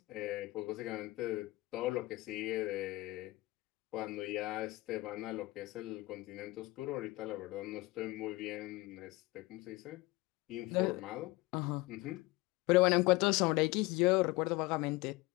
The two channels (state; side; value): quieter; right; 20.8 dB